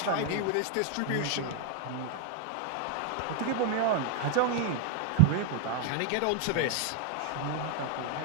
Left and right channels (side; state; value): both; different; correlation 0.01